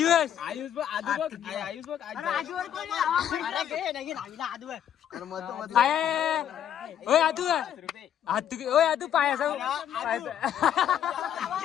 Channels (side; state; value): right; quieter; 9.9 dB